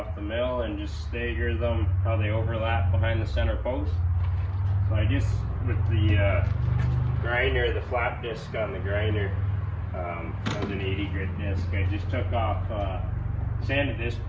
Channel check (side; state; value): both; identical; correlation 1.00